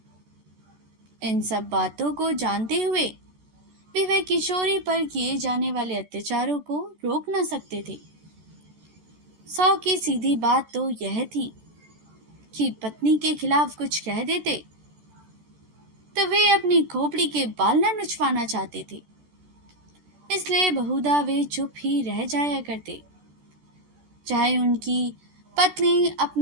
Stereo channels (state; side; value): late; left; 14 ms